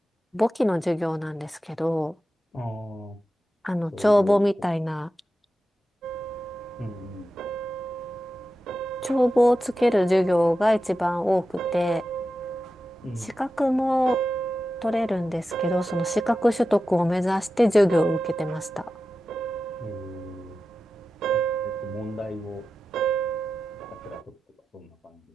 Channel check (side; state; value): both; normal; correlation 0.92